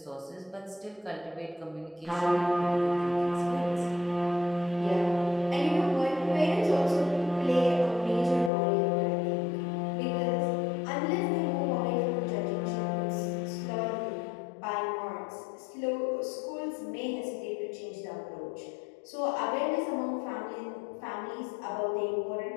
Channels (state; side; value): drops out; right; at 8.5 s